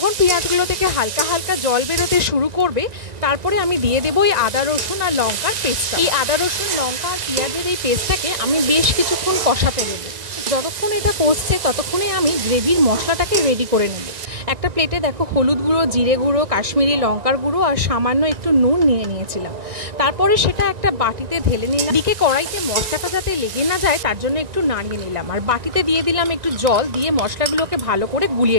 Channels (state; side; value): late; left; 1.9 ms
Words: পেঁয়াজগুলো থেকে হালকা হালকা জল বেরোতে শুরু করবে, তারপরে আমি দিয়ে দেবো এই আদা রসুন আর লঙ্কার পেস্টটা। এই আদা রসুন লঙ্কা আর পেঁয়াজের এই পেস্টটাকে আমি বেশ কিছুক্ষণ কষাতে দেবো। যতক্ষণ এটা কষছে ততক্ষণে আমি গ্রেভির মশলাটাকে রেডি করে নেব। একটা প্লেটে দেখো হলুদ গুঁড়ো, জিরে গুঁড়ো, কাশ্মীরি লঙ্কার গুঁড়ো আর সামান্য একটু নুন নিয়ে নিয়েছিলাম। তারপরে সেটা একটা বাটিতে ঢেলে নিলাম। দিকে কড়াইতে মশলাটা যাতে লেগে না যায় তার জন্য একটু নাড়িয়ে নিলাম, আর বাটিতে দিয়ে দিলাম একটু জল, দিয়ে মশলাগুলোকে ভালো করে